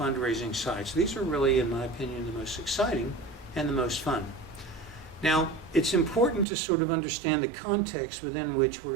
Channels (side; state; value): left; drops out; at 6.5 s